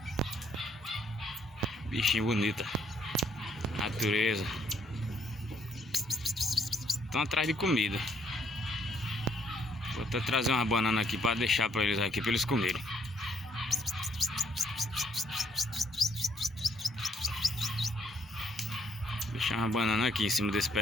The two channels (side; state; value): both; normal; correlation 0.68